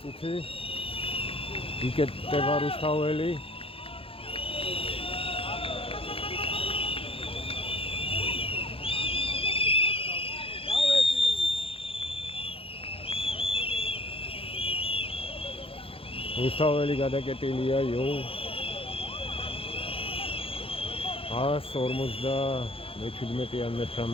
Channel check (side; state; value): right; late; 0.27 ms